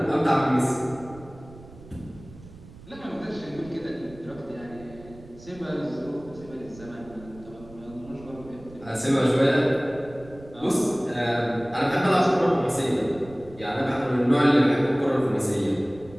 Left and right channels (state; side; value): noise; right; rumble, 19 dB below the sound